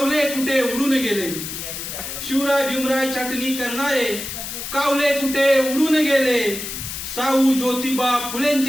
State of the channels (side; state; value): left; noise; hiss, 7 dB below the sound